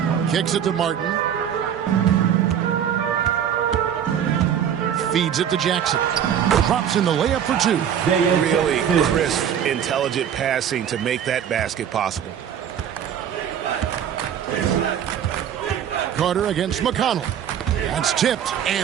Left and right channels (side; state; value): left; quieter; 9.1 dB